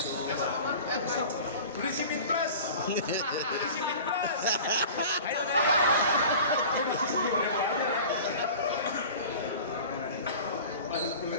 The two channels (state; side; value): inverted; both; correlation -0.39